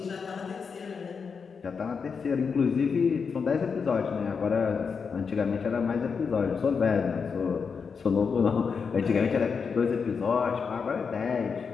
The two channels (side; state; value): right; quieter; 5.7 dB